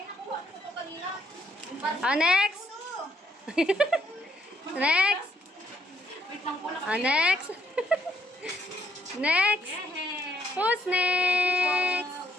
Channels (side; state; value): both; normal; correlation 0.71